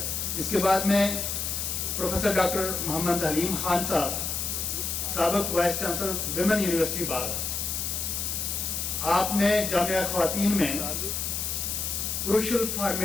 اس کے بعد میں پروفیسر ڈاکٹر محمد حلیم خان صاحب، سابق وائس چانسلر ویمن یونیورسٹی بار، آپ نے جامعہ خواتین میں کروشل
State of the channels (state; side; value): noise; left; hiss, 2 dB below the sound